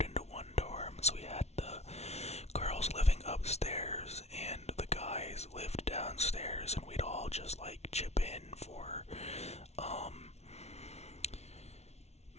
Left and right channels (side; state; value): right; late; 0.31 ms